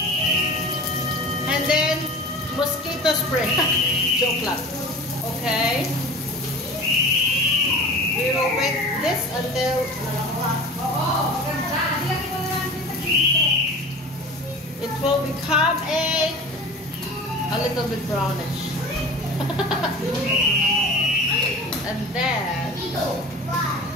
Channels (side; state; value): both; normal; correlation 0.35